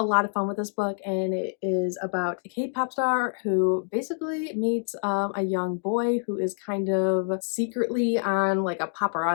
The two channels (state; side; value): silent; right; digital silence